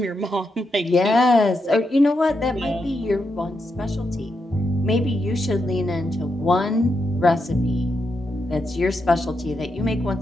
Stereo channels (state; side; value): normal; both; correlation 0.84